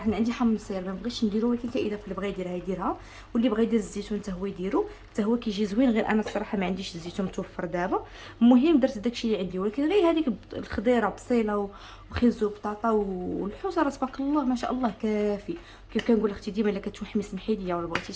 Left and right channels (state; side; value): identical; both; correlation 1.00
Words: انا عندي حامض سير ما بغيتش نديرو، ولكن كاضافه اللي بغى يديرها يديرها، واللي بغى يدير الزيتون حتى هو يديرو، حتى هو كيجي زوين. غير انا الصراحه ما عنديش الزيتون متوفر دابا. المهم درت داكشي اللي عندي، ولكن غير هذيك الخضيره بصيله وخيزو وبطاطا والحوسه راه تبارك الله ما شاء الله كافي. كيف كنقول اختي ديما الا كتوحمي سمحي لي، ولا بغيتي